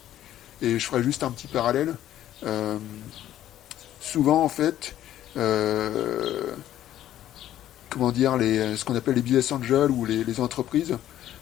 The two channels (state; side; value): quieter; right; 12.4 dB